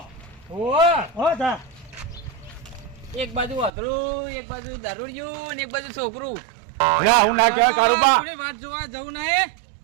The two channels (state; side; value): drops out; left; at 3.7 s